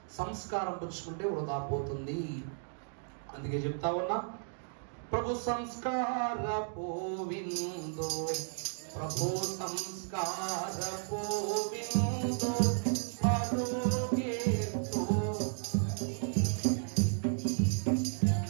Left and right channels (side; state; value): left; silent; digital silence